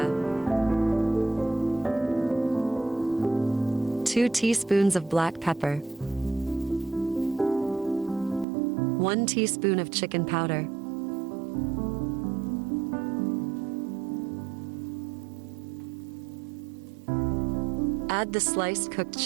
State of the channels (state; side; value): drops out; left; at 8.5 s